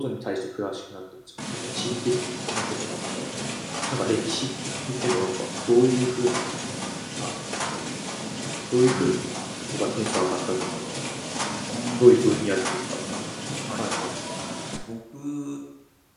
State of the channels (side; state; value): both; identical; correlation 1.00